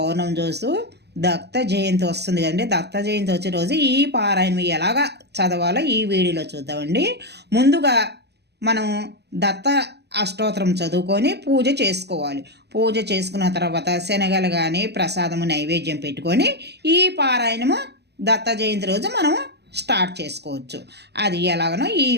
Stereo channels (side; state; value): left; late; 0.49 ms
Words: చూస్తూ దత్త జయంతి వస్తుంది కదండి. దత్త జయంతి వచ్చే రోజు ఈ పారాయణం ఎలాగా చదవాలో ఈ వీడియోలో చూద్దామండి. ముందుగా మనం దత్త అష్టోత్తరం చదువుకొని పూజ చేసుకోవాలి. పూజ చేసుకున్న తర్వాత శనగలు కానీ ప్రసాదము నైవేద్యం పెట్టుకొని ఈ పారాయణము దత్త జయంతి రోజు మనము స్టార్ట్ చేసుకోవచ్చు. అది ఎలాగనో ఈ